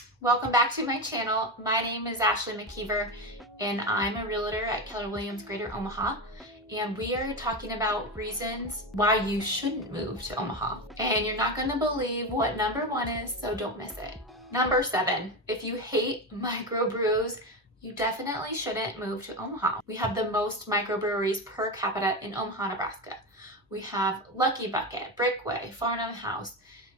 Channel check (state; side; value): normal; both; correlation 0.17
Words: Welcome back to my channel. My name is Ashley Mckeever, and I'm a realtor at Keller Williams Greater Omaha. And we are talking about reasons why you shouldn't move to Omaha. And you're not going to believe what number 1 is, so don't miss it. Number 7, if you hate microbrews, you definitely shouldn't move to Omaha. We have the most microbreweries per capita in Omaha, Nebraska. We have Lucky Bucket, Brickway, Farnham House,